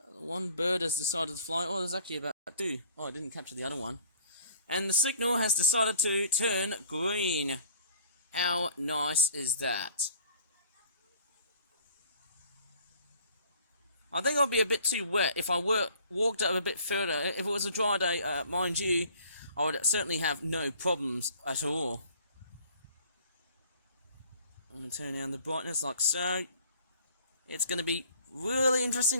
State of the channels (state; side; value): inverted; both; correlation -0.53